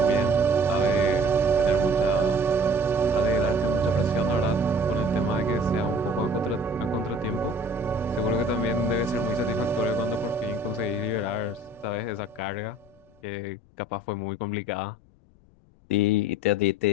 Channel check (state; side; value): noise; left; rumble, 29 dB below the sound